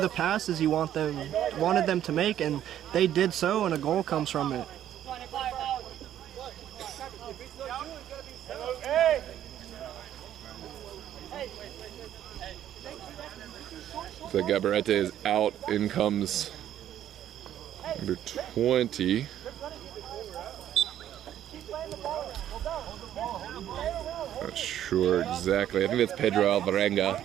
passes he wanted them to make, and they did so, and a goal comes from it. So Gabarete is out. In comes number 20. Not sure exactly. I think that's Pedro Alvarenga.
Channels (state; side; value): quieter; left; 11.2 dB